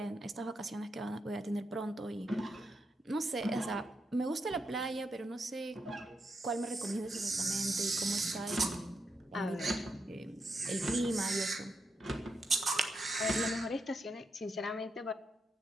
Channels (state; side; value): normal; both; correlation 0.83